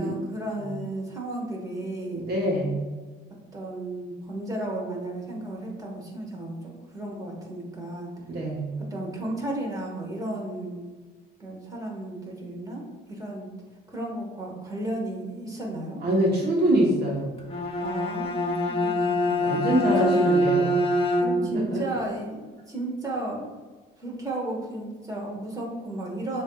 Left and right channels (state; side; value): normal; both; correlation 0.60